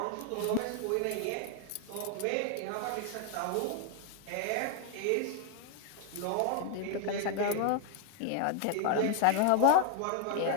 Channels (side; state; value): both; different; correlation 0.00